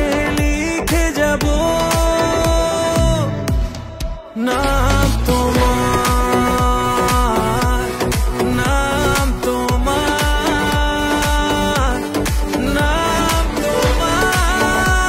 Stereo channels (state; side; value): identical; both; correlation 1.00